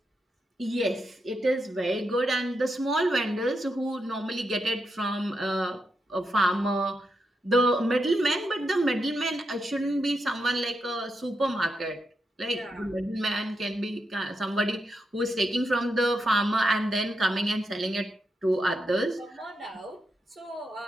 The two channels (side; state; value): both; normal; correlation 0.84